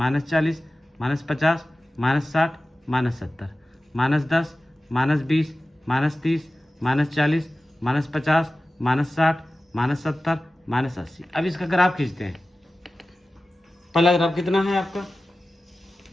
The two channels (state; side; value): normal; both; correlation 0.95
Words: -50, -60, -70। -10, -20, -30, -40, -50, -60, -70, -80। अब इसका ग्राफ खींचते हैं। पहला ग्राफ कितना है आपका?